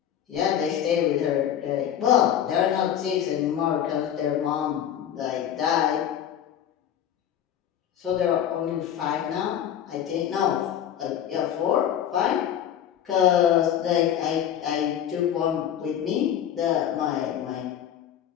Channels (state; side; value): quieter; right; 10.0 dB